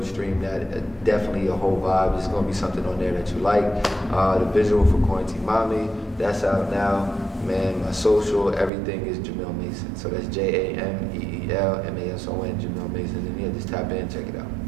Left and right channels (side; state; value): left; drops out; at 8.7 s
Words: stream that. Definitely a whole vibe. There's gonna be something on there that you like. The visual for Quarantine Mommy. That's out now. Man, my social, everything is Jameel Mason. So that's JameelMason, Jameel Mason. And yeah, just tap in, check it out.